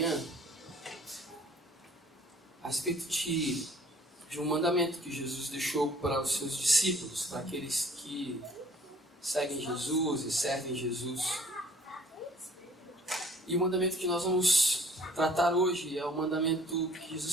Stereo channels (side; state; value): both; normal; correlation 0.54